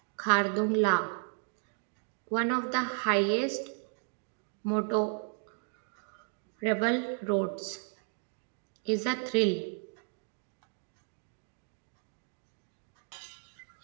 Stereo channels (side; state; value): left; silent; 55 dB below the other